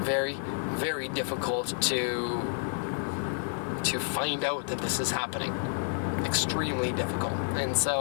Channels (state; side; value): silent; right; digital silence